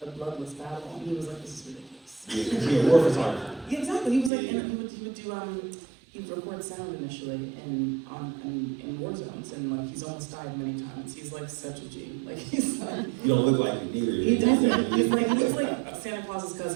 a bloodless battle, and he was like, this is ridiculous. Yeah, war photographer. Yeah, exactly. He was like, Yeah. and he would do he would record sound initially in war zones, and like he's almost died many times. He's like such a G. Like he's like. You don't look like it either. He doesn't. He looks like Santa Claus's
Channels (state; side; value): drops out; left; at 4.3 s